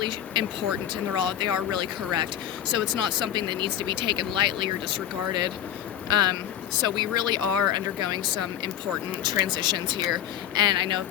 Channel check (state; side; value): quieter; right; 10.8 dB